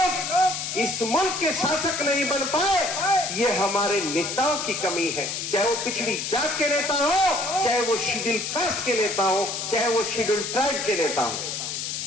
इस मुल्क के शासक नहीं बन पाए, ये हमारे नेताओं की कमी है। चाहे वो पिछड़ी जात के नेता हो, चाहे वो शेड्यूल कास्ट के नेता हो, चाहे वो शेड्यूल ट्राइब के नेता हो।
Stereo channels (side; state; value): left; noise; hiss, 4 dB below the sound